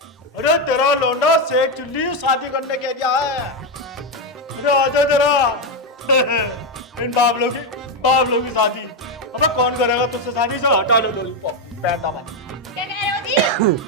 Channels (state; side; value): normal; both; correlation 0.06